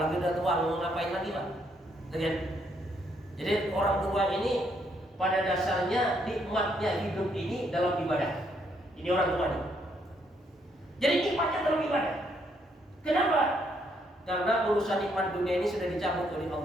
udah tua, mau ngapain lagi, Pak? Jadi orang tua ini pada dasarnya nikmatnya hidup ini dalam ibadah. Ini orang tua nih. Jadi nikmatnya dalam ibadah. Kenapa? Karena urusan nikmat dunia ini sudah dicabut oleh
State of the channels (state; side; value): normal; both; correlation 0.72